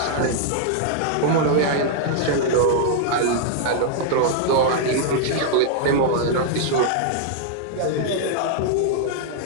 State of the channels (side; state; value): both; different; correlation -0.01